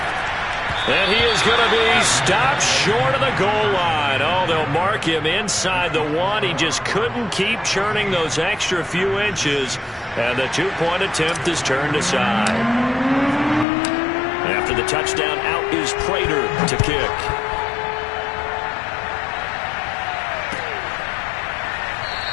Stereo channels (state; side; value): drops out; right; at 13.7 s